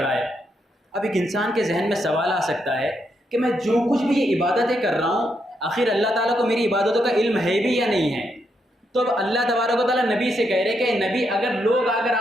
है। अब एक इंसान के जहन में सवाल आ सकता है कि मैं जो कुछ भी ये इबादतें कर रहा हूँ आखिर अल्लाह ताला को मेरी इबादतों का इल्म है भी या नहीं है। तो अब अल्लाह तबारक व तआला नबी से कह रहे कि नबी, अगर लोग आकर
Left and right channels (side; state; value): both; normal; correlation 0.79